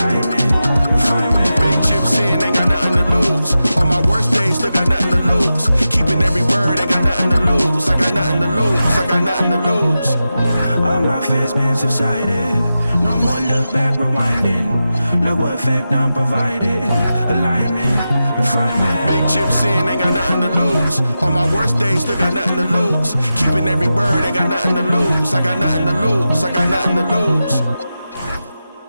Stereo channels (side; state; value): both; inverted; correlation -0.91